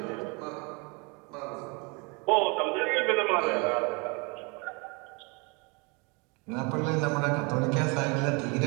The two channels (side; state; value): left; quieter; 30.9 dB